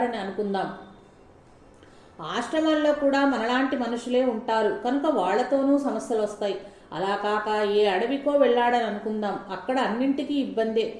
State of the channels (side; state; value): both; identical; correlation 1.00